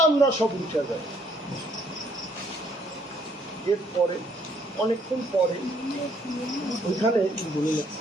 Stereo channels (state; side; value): normal; both; correlation 0.66